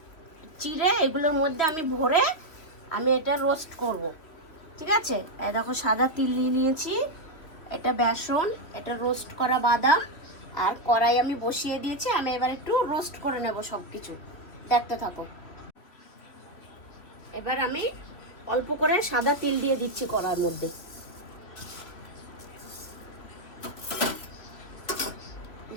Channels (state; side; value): late; right; 2.9 ms